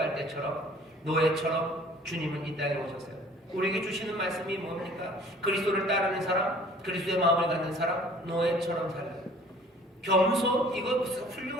때처럼 노예처럼 주님은 이 땅에 오셨어요. 우리에게 주시는 말씀이 뭡니까? 그리스도를 따르는 사람, 그리스도의 마음을 갖는 사람, 노예처럼 살아요. 겸손? 이거 무슨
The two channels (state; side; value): normal; both; correlation 0.52